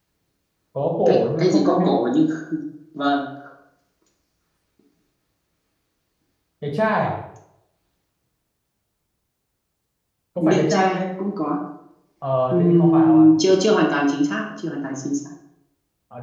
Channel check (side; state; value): both; identical; correlation 1.00